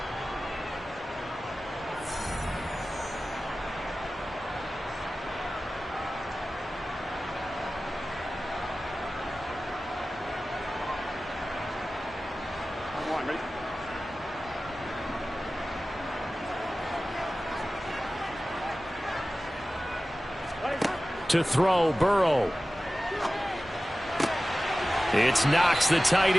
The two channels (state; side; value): normal; both; correlation 0.96